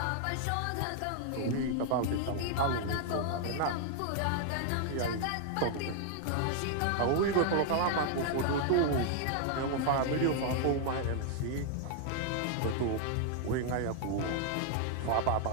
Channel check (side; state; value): both; different; correlation 0.00